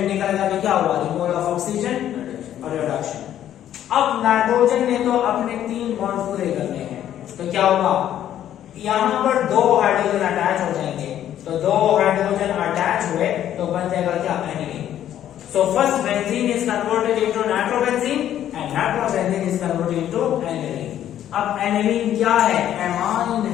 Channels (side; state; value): right; quieter; 11.2 dB